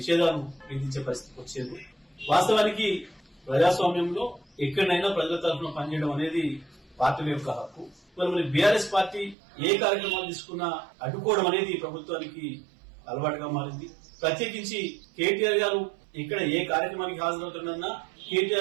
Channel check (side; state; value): left; drops out; at 9.3 s